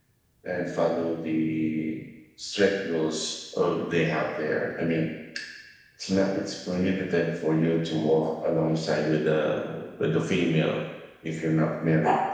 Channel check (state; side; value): identical; both; correlation 1.00